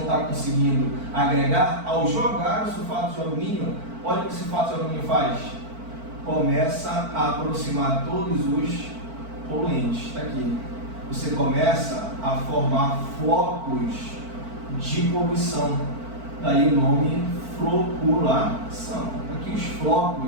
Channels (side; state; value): left; late; 4.5 ms